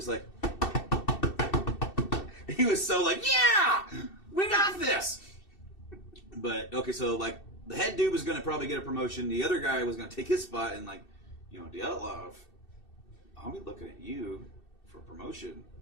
like, he was so like, yeah, we got this. But, okay, so like, the head dude was going to probably get a promotion. The other guy was going to take his spot. And like, Dyatlov, I'll be looking at you for promotion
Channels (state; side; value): late; right; 2.7 ms